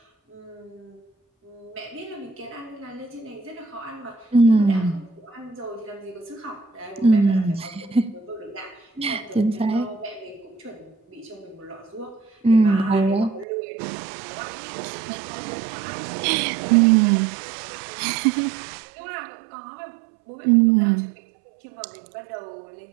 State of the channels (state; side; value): drops out; left; at 13.5 s